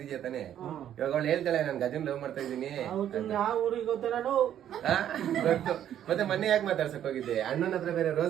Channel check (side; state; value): left; quieter; 10.6 dB